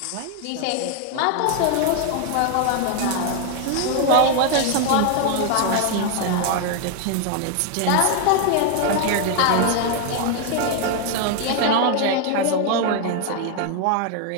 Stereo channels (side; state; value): both; different; correlation 0.00